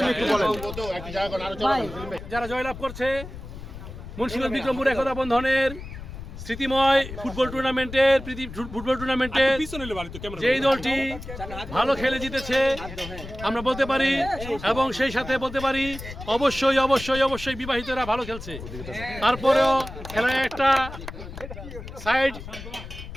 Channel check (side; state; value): left; noise; rumble, 12 dB below the sound